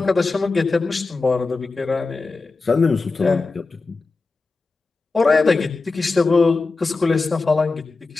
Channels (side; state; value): right; quieter; 3.9 dB